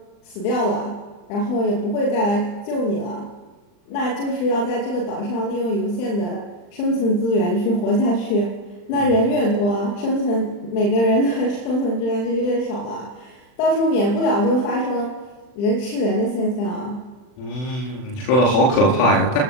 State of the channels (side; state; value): right; late; 39 ms